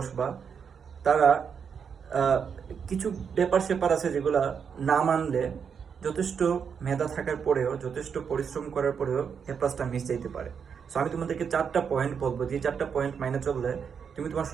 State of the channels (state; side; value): quieter; left; 6.8 dB